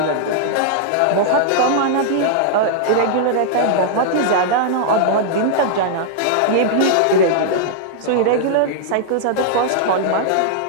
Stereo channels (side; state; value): both; different; correlation -0.01